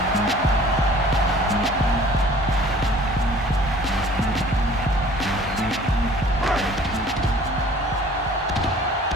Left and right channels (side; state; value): both; normal; correlation 0.50